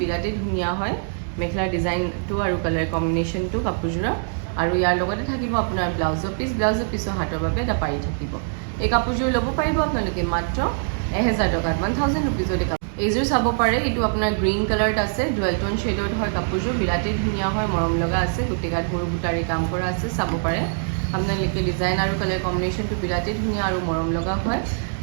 ধুনীয়া হয় মেখেলাৰ ডিজাইনটো আৰু কালাৰ কম্বিনেশ্যনটো কাপোৰযোৰৰ। আৰু ইয়াৰ লগতে থাকিব আপোনাৰ ব্লাউজৰ পিচ। ব্লাউজৰ পিছৰ হাতৰ বাবে এটা পাৰি থাকিব। এই কাপোৰযোৰ ল'ব পাৰিব আপোনালোকে মাত্ৰ 1000 টকাত, 1000 ৰুপিজত। এইযোৰ চাব পাৰে, এইটো আপোনাৰ গ্ৰীণ কালাৰত আছে, ডুৱেল টোন শ্বেডত হয় কাপোৰযোৰ, বিৰাটেই ধুনীয়া হয়, মৰম লগা আছে। গোটেই গাত সৰু সূতাৰে কাম কৰা আছে। চাব পাৰে আপোনালোকে ডিজাইন আৰু কালাৰ কম্বিনেশ্যনটো বিৰাটেই ধুনীয়া আৰু মৰম লগা হয়।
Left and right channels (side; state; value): left; silent; digital silence